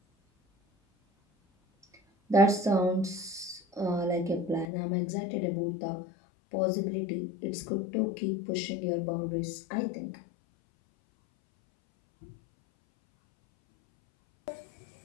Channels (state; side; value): drops out; right; at 4.7 s